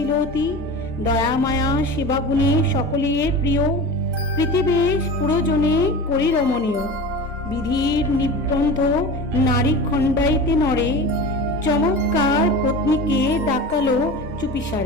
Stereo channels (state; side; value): normal; both; correlation 0.32